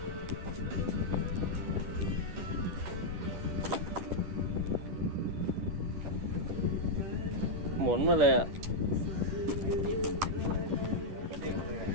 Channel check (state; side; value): late; left; 10 ms